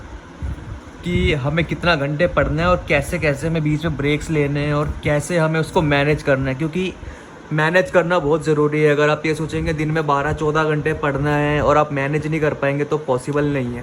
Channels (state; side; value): identical; both; correlation 1.00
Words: कि हमें कितना घंटे पढ़ना है और कैसे कैसे हमें बीच में ब्रेक्स लेने हैं और कैसे हमें उसको मैनेज करना है, क्योंकि मैनेज करना बहुत ज़रूरी है। अगर आप ये सोचेंगे दिन में 12-14 घंटे पढ़ना है और आप मैनेज नहीं कर पाएंगे तो पॉसिबल नहीं